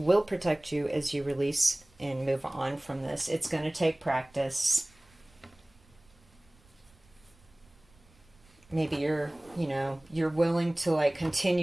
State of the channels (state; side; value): noise; right; rumble, 29 dB below the sound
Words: protect you as you release and move on from this. It's going to take practice. Maybe you're willing to like